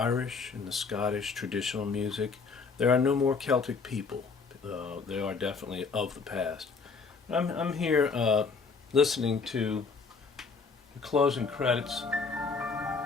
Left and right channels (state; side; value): quieter; right; 4.8 dB